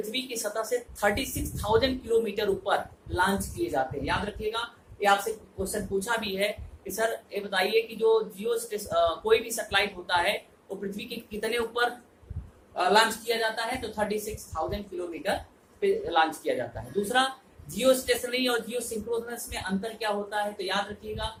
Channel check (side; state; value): both; identical; correlation 1.00